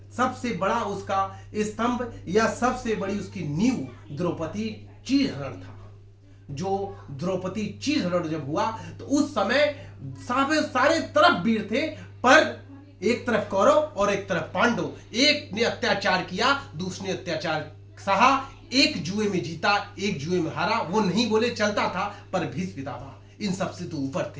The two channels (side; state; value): both; identical; correlation 1.00